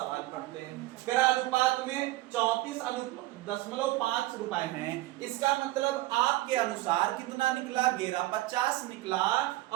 पढ़ते हैं, अगर अनुपात में 34.5 रुपए हैं, इसका मतलब आपके अनुसार कितना निकला 1150 निकला,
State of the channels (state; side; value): quieter; left; 18.0 dB